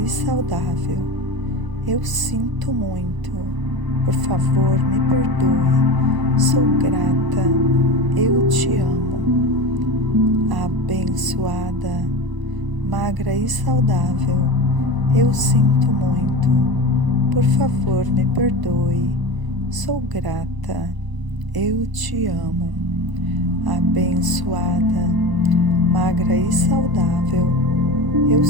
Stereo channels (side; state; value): left; late; 1.0 ms